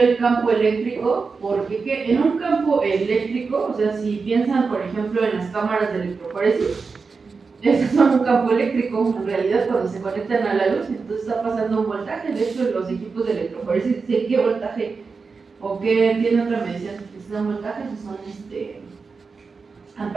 campo eléctrico porque en un campo eléctrico, o sea, si piensan, por ejemplo, en las cámaras de electroforesis, esos son un campo eléctrico, en realidad, cuando se conectan a la luz, entonces está pasando un voltaje. De hecho, los equipos de electroforesis dicen qué voltaje o qué tiene otra medición. Si son voltajes o son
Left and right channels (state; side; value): quieter; left; 4.7 dB